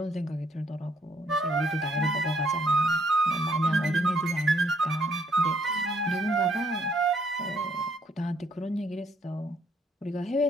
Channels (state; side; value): normal; both; correlation 0.68